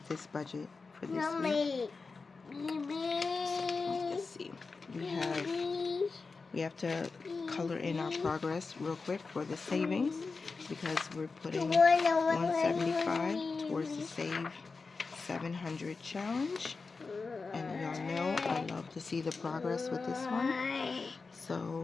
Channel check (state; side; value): quieter; right; 4.3 dB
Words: this budget for this week. So, let's see. We have to color in our progress real quick for the savings, because we're putting 175 towards the Save 700 challenge. And y'all know I love to see the progress with this one.